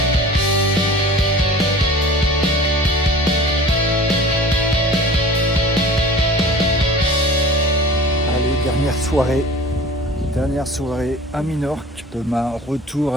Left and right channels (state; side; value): normal; both; correlation 0.41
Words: Allez, dernière soirée à Minorque. Demain, retour